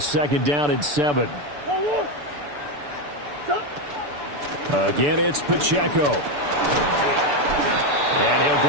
2nd down and 7. Again, it's Pacheco. And he'll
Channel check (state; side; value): late; left; 6.9 ms